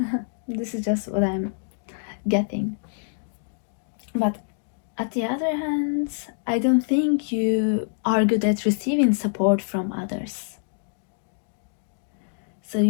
This is just what I'm getting. But at the other hand, I don't think you are good at receiving support from others. So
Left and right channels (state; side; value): silent; right; digital silence